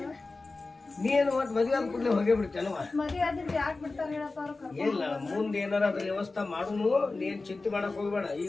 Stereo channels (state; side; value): quieter; right; 3.5 dB